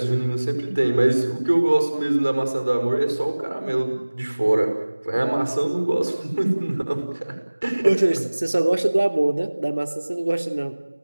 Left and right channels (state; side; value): inverted; both; correlation -1.00